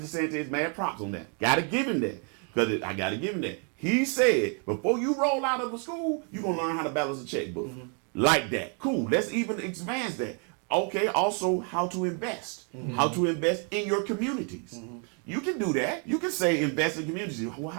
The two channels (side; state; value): left; quieter; 39.4 dB